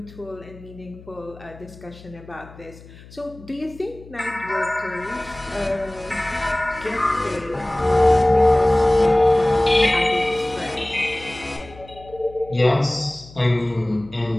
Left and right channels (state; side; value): noise; left; hum, 20 dB below the sound